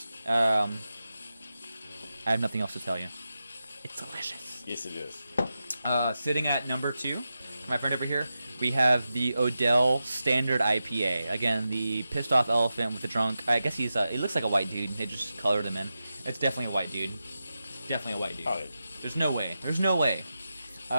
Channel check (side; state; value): both; inverted; correlation -0.90